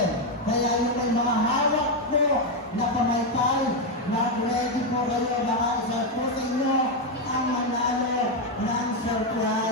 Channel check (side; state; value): both; normal; correlation 0.04